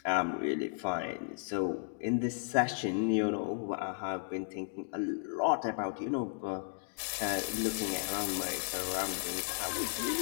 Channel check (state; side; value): silent; right; digital silence